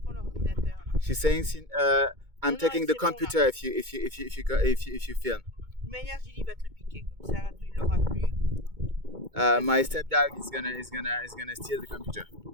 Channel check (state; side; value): late; left; 2.2 ms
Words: prends l'ordinateur. She's saying I'm taking the computer bon, if you film. De manière, Gilly va te le piquer comme ça, tu l'auras plus. My stepdad is gonna steal the computer.